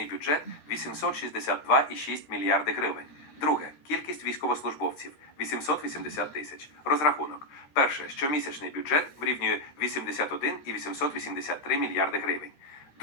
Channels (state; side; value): late; right; 13 ms